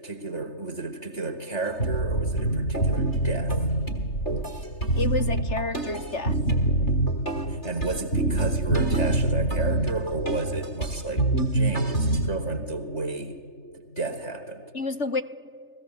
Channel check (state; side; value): late; right; 3.3 ms